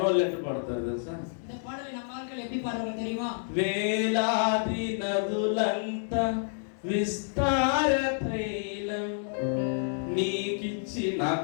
ఎట్లా పడతారు తెలుసా? இந்த பாடலை நம்ம ஆட்கள் எப்படி பாடுவாங்க தெரியுமா? వేలాది నదులంత విస్తార తైలం నీకిచ్చి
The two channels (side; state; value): right; silent; digital silence